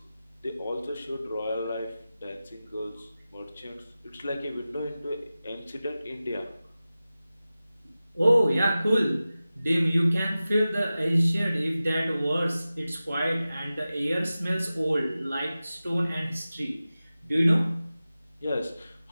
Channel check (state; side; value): inverted; both; correlation -0.95